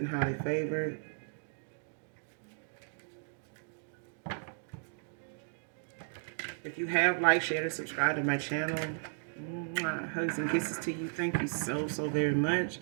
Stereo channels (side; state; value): left; silent; digital silence